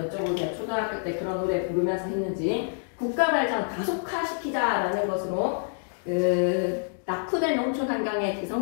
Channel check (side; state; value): right; silent; digital silence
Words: 초등학교 때 그런 노래 부르면서 했는지. 국가발전 가속화시키자라는 것으로 낙후된 농촌 환경의